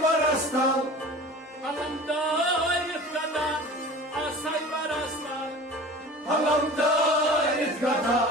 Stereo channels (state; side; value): normal; both; correlation 0.39